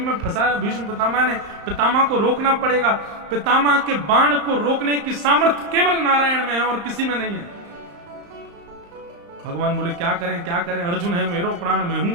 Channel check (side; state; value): left; late; 35 ms